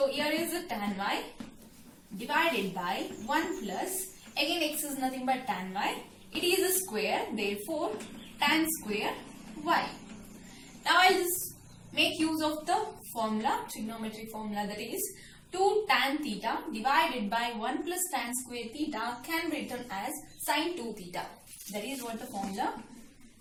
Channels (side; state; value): both; identical; correlation 1.00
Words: here is the tan y divided by 1 plus, again x is nothing but tan y. It is a square, therefore tan square y. Now I'll just make use of the formula, trigonometric formula, that is 2 tan theta divided by 1 plus tan square theta can be written as sine 2 theta. That is what the formula.